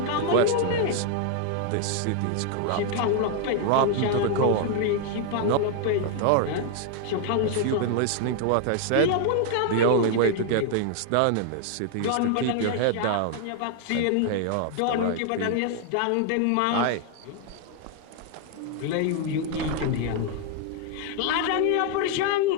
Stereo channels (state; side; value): different; both; correlation 0.00